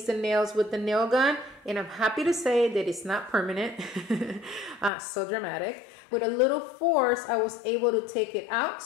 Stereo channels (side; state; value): right; drops out; at 4.9 s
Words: the nails with the nail gun, and I'm happy to say that it's not permanent. So dramatic. With a little force, I was able to take it out,